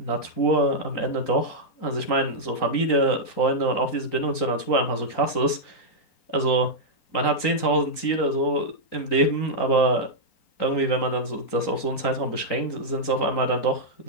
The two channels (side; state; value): right; late; 3.9 ms